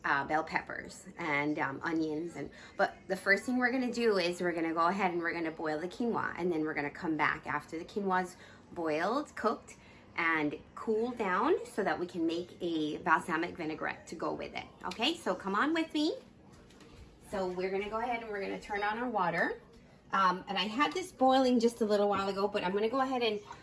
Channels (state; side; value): identical; both; correlation 1.00